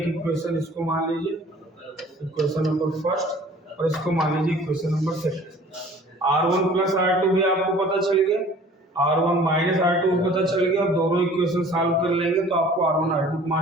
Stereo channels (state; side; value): normal; both; correlation 0.49